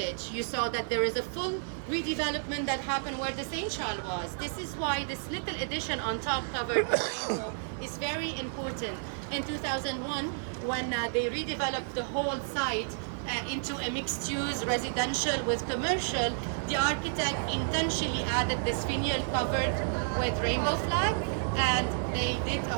You saw that there is a full redevelopment that happened where the St. Charles was. This is why this little addition on top covered rainbow is very important. In 2001, when they redeveloped the whole site, into a mixed-use residential with commercial, the architect intentionally added this finial covered with rainbow flag, and they did a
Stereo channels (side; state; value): left; silent; digital silence